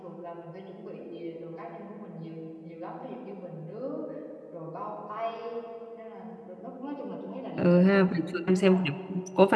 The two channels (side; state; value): both; identical; correlation 1.00